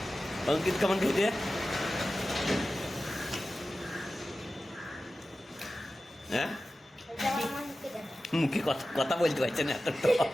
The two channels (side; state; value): both; normal; correlation 0.94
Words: অঙ্কিত কেমন খেতে হ্যাঁ মুখে কথা কথা বলতে পারছে না এত তো